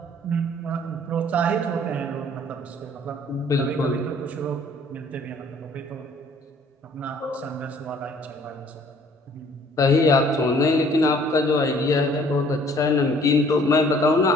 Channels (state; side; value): normal; both; correlation 0.57